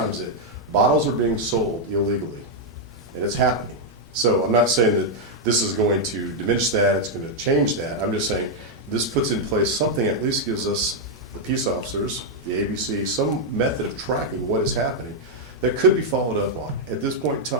that bottles are being sold illegally, and it's happening. So I'm not saying that this is going to diminish that, it's going to change that. I'm just saying this puts in place something that at least gives us, the peace officers, the ABC, some method of tracking what is happening that could be followed up on. At this point in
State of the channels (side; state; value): both; normal; correlation -0.01